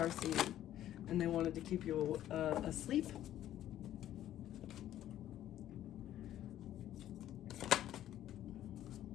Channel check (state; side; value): quieter; right; 12.3 dB